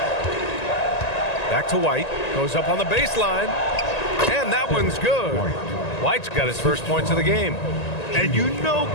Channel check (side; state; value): right; late; 1.9 ms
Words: Back to White, goes up on the baseline, and that one's good. White's got his first points of the game. And you know